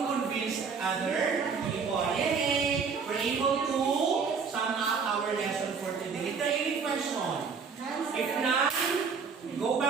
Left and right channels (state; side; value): quieter; left; 5.5 dB